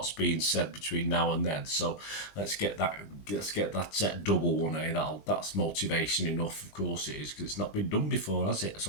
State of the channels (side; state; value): right; late; 20 ms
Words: being said between now and then. So let's get that double one. That's motivation enough. Of course it is, because it's not been done before, has it?